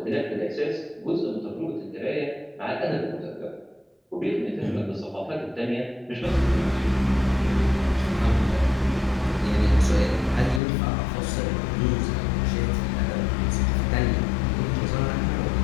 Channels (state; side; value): drops out; right; at 10.6 s